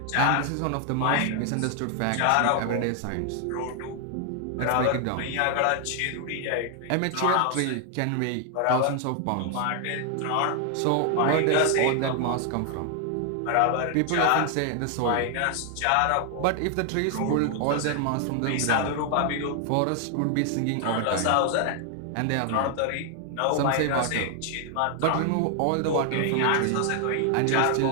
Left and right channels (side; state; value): both; different; correlation 0.00